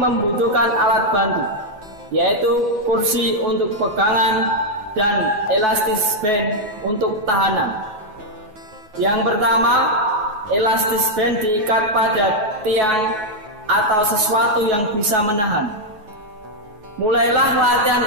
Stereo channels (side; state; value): left; late; 9.3 ms